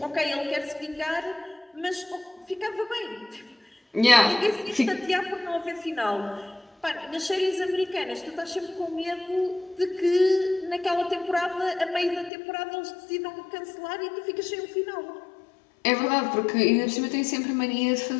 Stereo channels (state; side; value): drops out; right; at 12.3 s